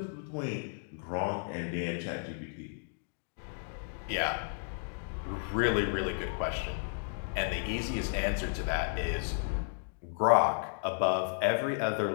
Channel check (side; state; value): right; silent; digital silence